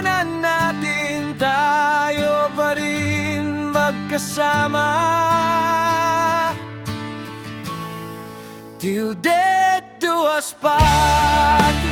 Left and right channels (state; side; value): identical; both; correlation 1.00